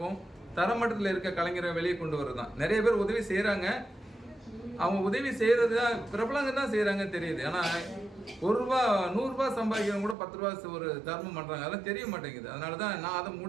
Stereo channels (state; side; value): drops out; left; at 10.2 s